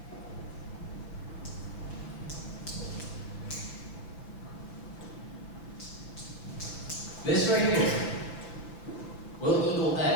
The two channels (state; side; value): late; right; 5.8 ms